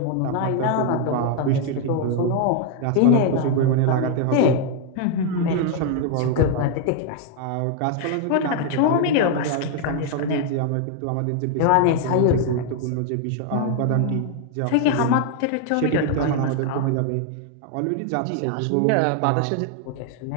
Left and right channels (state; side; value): different; both; correlation 0.00